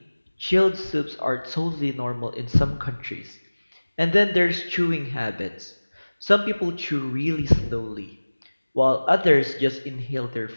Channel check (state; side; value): inverted; both; correlation -1.00